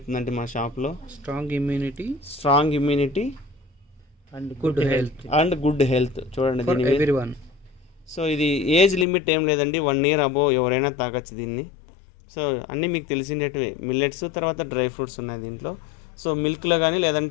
మా షాప్లో. Strong immunity and good health చూడండి ఎవ్రీవన్. సో ఇది ఏజ్ లిమిట్ ఏం లేదండి, 1 year అబోవ్ ఎవరైనా తాగొచ్చు దీన్ని. సో అన్నీ మీకు తెలిసినట్టువే మిల్లెట్స్, తర్వాత డ్రై ఫ్రూట్స్ ఉన్నాయి దీంట్లో. సో మిల్క్లో కానీ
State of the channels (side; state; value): right; drops out; at 9.1 s